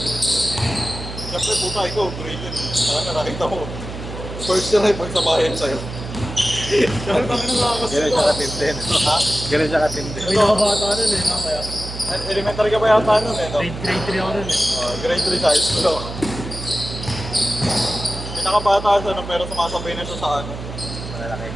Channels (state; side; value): noise; right; hum, 9 dB below the sound